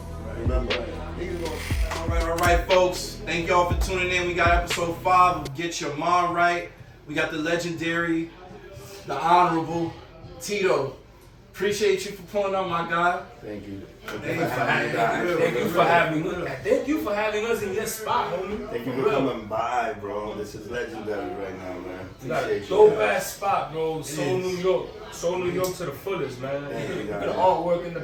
Remember. All right, folks. Thank y'all for tuning in. We got episode 5 of Get Your Mind Right. We got the legendary, the honorable Tito. Appreciate you for pulling up, my guy. Thank you. Thank you for having us in your spot, homie. Thank you for coming by, bro. This is legendary right now, man. You got a Appreciate dope you. ass spot, bro. Soul New York. Soul New York to the fullest, man. Thank you, Look at guys. the artwork in the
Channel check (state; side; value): identical; both; correlation 1.00